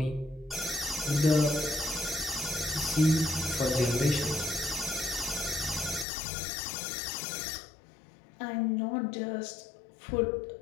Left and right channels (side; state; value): right; drops out; at 6.1 s